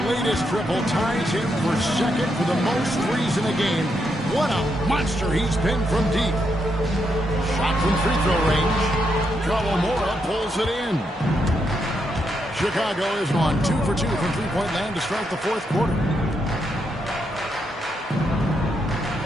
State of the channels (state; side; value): normal; both; correlation 0.80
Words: latest triple ties him for second for the most threes in a game. What a monster he's been from deep. Shot from free throw range. Kawamura pulls it in. Chicago is on 2 for 2 from three-point land to start the fourth quarter.